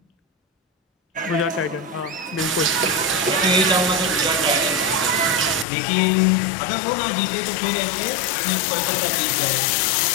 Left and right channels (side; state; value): right; drops out; at 5.7 s